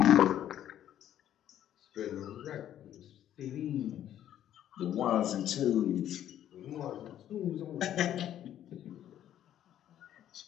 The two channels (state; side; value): quieter; right; 11.2 dB